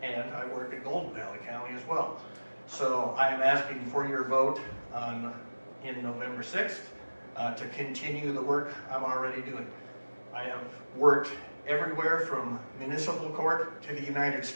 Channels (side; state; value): both; inverted; correlation -1.00